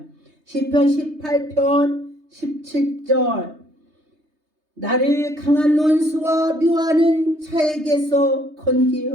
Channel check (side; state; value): left; late; 3.3 ms